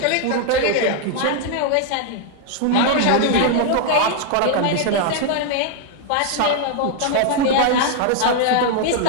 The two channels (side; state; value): both; different; correlation 0.00